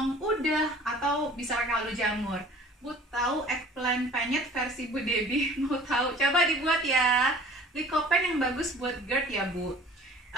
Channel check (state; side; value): normal; both; correlation 0.47